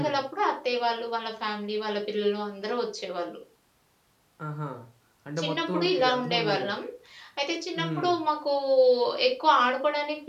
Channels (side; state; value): both; identical; correlation 1.00